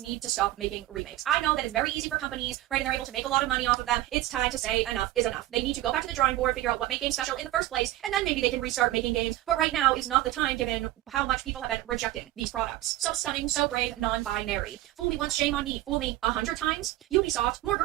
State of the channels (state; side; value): quieter; left; 16.0 dB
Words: need to stop making remakes. I know that it's very easy for companies, right, and they're able to make a lot of money off of them. It's time to say enough is enough. They need to go back to the drawing board, figure out what made games special in the first place, and then maybe they can restart making games. But right now is not the time, given how much people have been rejecting these products. So stunning, so brave, non-binary. Fool me once, shame on me. Fool me 100 times. Ubisoft, more